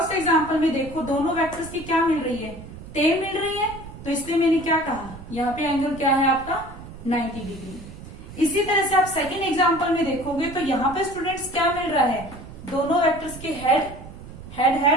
एग्जांपल में देखो, दोनों वेक्टर्स की क्या मिल रही है, टेल मिल रही है, तो इसलिए मैंने क्या कहा, यहाँ पे एंगल क्या है आपका 90 डिग्री। इसी तरह से आप सेकेंड एग्जाम्पल में देखोगे तो यहाँ पे स्टूडेंट्स क्या मिल रहा है, दोनों वेक्टर्स के हेड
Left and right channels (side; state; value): right; noise; rumble, 15 dB below the sound